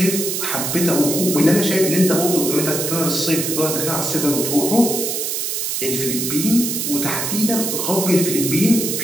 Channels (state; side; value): noise; right; hiss, 2 dB below the sound